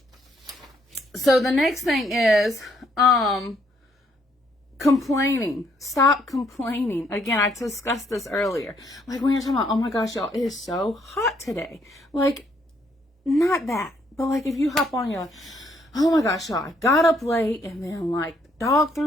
So the next thing is complaining. Stop complaining. Again, I discussed this earlier. Like when you're talking about, oh my gosh, y'all, it is so hot today. Like, not that. But like if you hop on your, oh my gosh, y'all, I got up late and then like dog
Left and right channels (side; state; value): both; normal; correlation 0.70